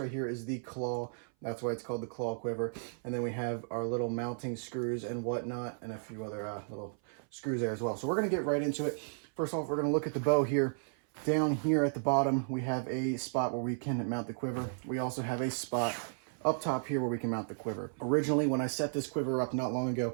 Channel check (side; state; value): left; silent; 55 dB below the other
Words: here is the claw. That's why it's called the claw quiver. And then we have our little mounting screws and whatnot, and a few other little screws there as well. So we're going to get right into it. First off, we're going to look at the bow here. Down here at the bottom, we have a spot where we can mount the quiver. We also have a spot up top here where we can mount the quiver. Originally, when I set this quiver up not long ago,